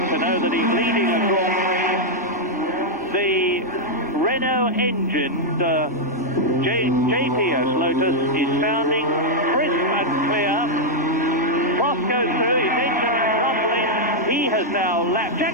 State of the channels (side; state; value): both; normal; correlation -0.03